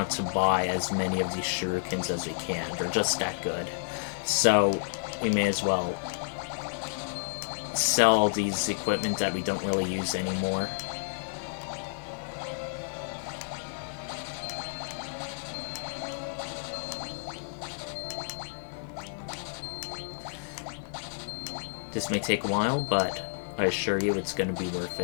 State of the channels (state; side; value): silent; right; 58 dB below the other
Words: to buy as many of these shurikens as we can. They're just that good. So we may as well sell all these equipment that we don't really use anymore. This may take a while, but I assure you it's going to be worth